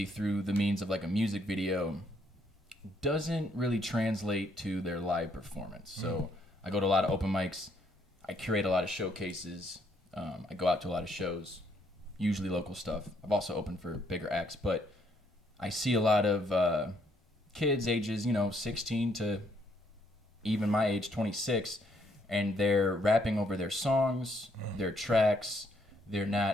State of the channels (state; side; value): normal; both; correlation 0.70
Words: through the means of like a music video, doesn't really translate to their live performance. So I go to a lot of open mics. I curate a lot of showcases. I go out to a lot of shows, usually local stuff. I've also opened for bigger acts, but I see a lot of kids ages, 16 to even my age, 26, and they're rapping over their songs, their tracks. They're